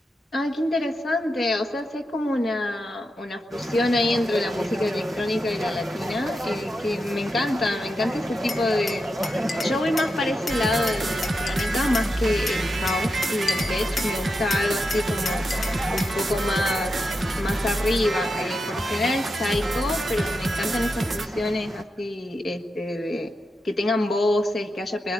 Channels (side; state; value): both; normal; correlation 0.87